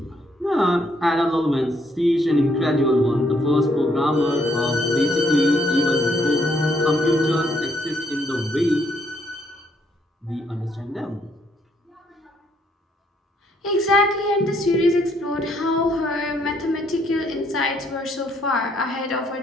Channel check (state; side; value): normal; both; correlation 0.70